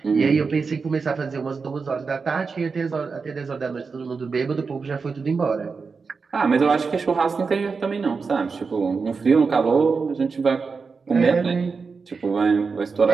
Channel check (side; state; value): left; quieter; 4.9 dB